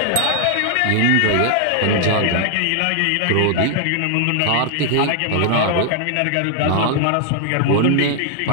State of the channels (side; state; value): both; different; correlation 0.00